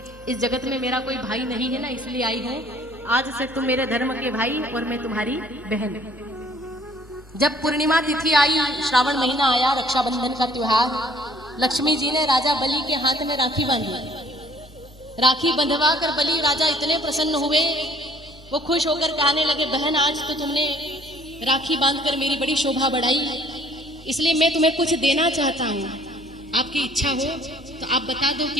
इस जगत में मेरा कोई भाई नहीं है ना, इसलिए आई हूँ, आज से तुम मेरे धर्म के भाई और मैं तुम्हारी बहन। जब पूर्णिमा तिथि आई, श्रावण महीना आया, रक्षाबंधन का त्योहार, लक्ष्मी जी ने राजा बलि के हाथ में राखी बांधी। राखी बंधवा कर बलि राजा इतने प्रसन्न हुए, वो खुश होकर कहने लगे बहन आज तो तुमने राखी बांधकर मेरी बड़ी शोभा बढ़ाई, इसलिए मैं तुम्हें कुछ देना चाहता हूँ, आपकी इच्छा हो तो आप बता दो कि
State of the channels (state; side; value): normal; both; correlation 0.58